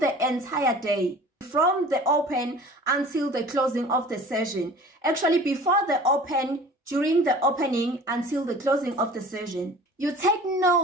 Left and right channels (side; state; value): both; normal; correlation 0.44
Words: the entire day, from the open until the closing of the session. Actually, before the open, during the opening, until the closing of the session. You take